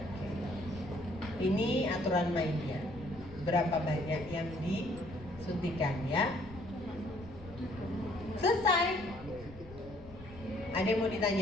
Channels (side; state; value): left; noise; rumble, 18 dB below the sound